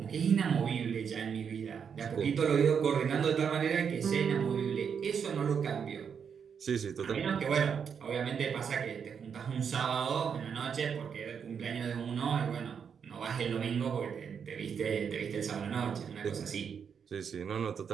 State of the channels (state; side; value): quieter; left; 7.0 dB